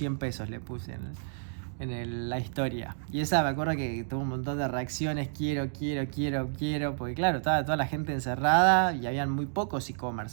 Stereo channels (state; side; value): silent; left; digital silence